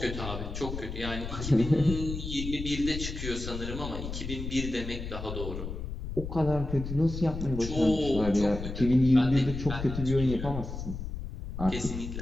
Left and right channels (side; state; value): left; noise; rumble, 6 dB below the sound